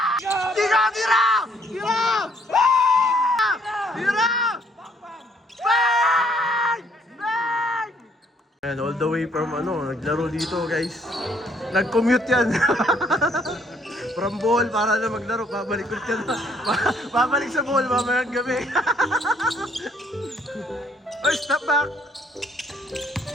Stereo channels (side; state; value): both; normal; correlation 0.65